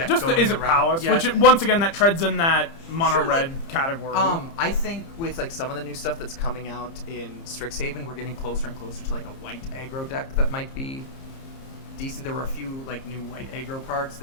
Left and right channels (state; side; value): late; right; 30 ms